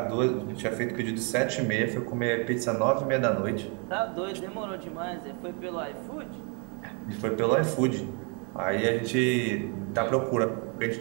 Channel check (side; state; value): left; quieter; 35.9 dB